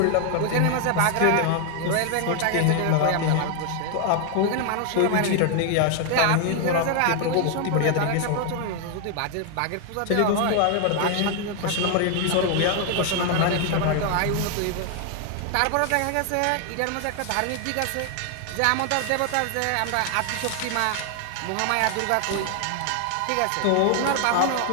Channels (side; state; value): both; different; correlation 0.00